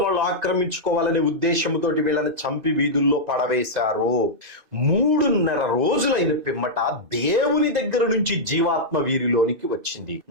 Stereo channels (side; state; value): left; late; 2.6 ms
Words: వాళ్ళు ఆక్రమించుకోవాలనే ఉద్దేశంతో వీళ్ళని చంపి వీధుల్లో పడవేశారు. 3.5 రోజులైన పిమ్మట దేవుని దగ్గర నుంచి జీవాత్మ వీరిలోనికి వచ్చింది.